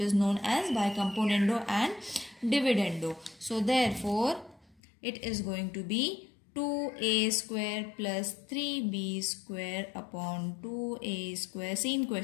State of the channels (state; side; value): drops out; right; at 4.8 s